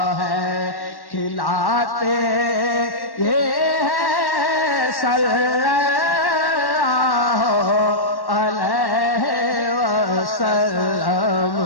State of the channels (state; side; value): late; right; 1.1 ms